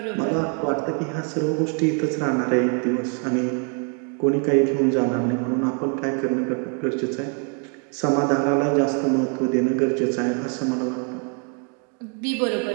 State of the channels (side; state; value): left; quieter; 39.6 dB